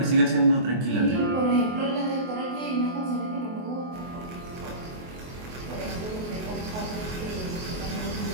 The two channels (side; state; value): left; late; 24 ms